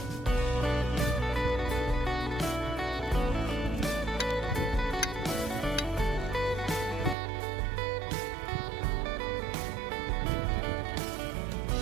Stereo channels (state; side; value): drops out; left; at 7.2 s